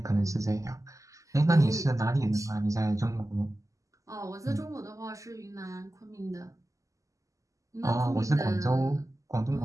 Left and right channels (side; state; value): left; late; 0.16 ms